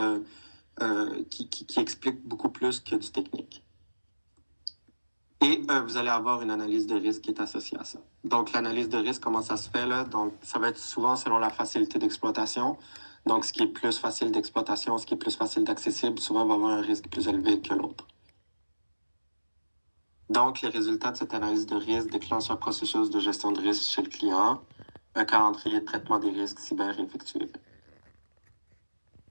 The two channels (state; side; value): inverted; both; correlation -1.00